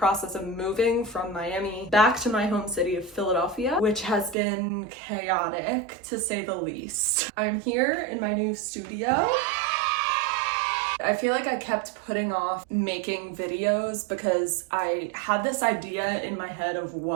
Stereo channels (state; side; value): drops out; left; at 4.4 s